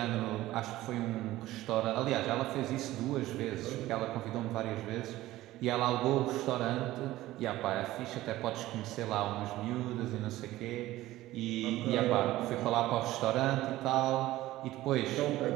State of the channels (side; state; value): left; quieter; 16.3 dB